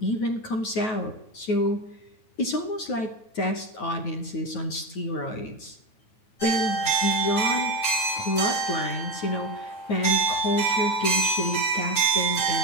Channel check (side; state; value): right; late; 9.3 ms